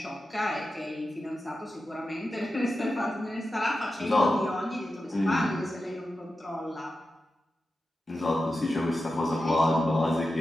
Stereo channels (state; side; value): normal; both; correlation 0.91